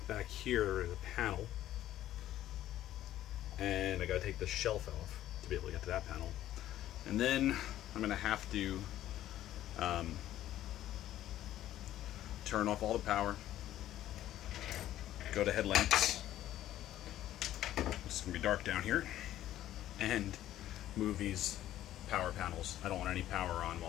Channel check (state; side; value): quieter; right; 13.0 dB